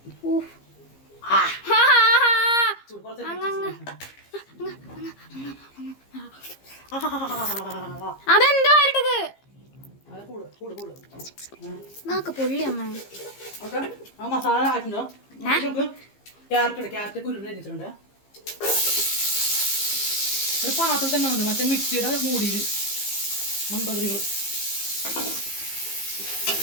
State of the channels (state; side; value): late; right; 15 ms